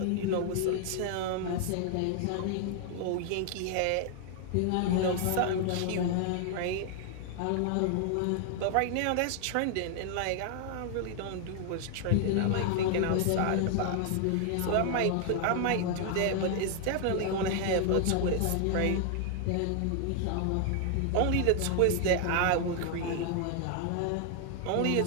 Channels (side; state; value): both; different; correlation 0.00